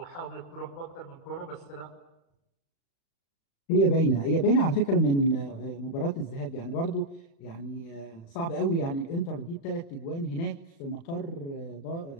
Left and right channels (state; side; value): late; right; 36 ms